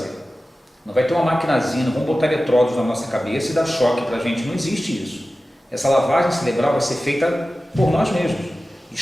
Não vai ter uma maquinazinha, não vamos botar eletrodos na nossa cabeça e dar choque para a gente, não existe isso. Essa lavagem cerebral vai ser feita por nós mesmos,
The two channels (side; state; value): both; normal; correlation 0.95